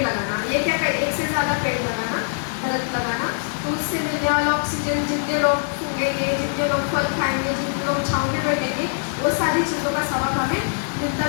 लगाना। ये क्या कर, एक से ज़्यादा पेड़ लगाना, दरख्त लगाना, तो उससे मिलने वाला ऑक्सीजन, जितने लोग सूंघेंगे, जितने लोग फल खाएंगे, जितने लोग छाँव में बैठेंगे, वो सारी चीज़ों का सवाब हमें मिलता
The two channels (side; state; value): right; silent; digital silence